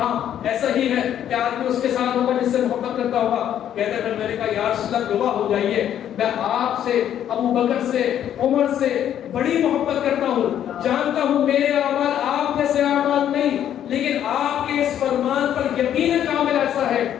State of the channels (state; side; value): quieter; right; 10.4 dB